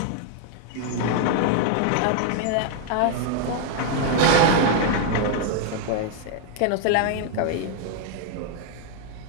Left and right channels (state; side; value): different; both; correlation 0.00